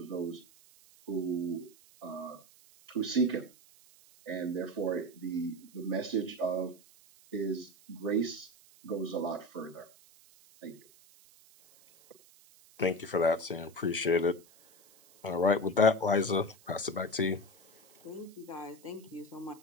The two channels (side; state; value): right; noise; hiss, 26 dB below the sound